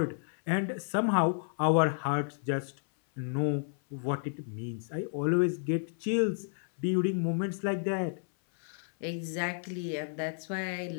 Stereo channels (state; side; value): silent; right; 57 dB below the other